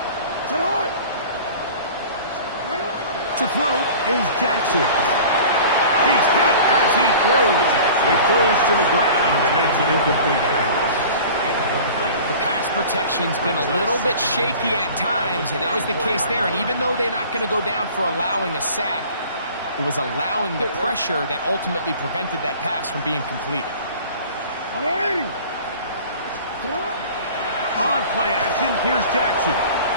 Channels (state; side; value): inverted; both; correlation -0.43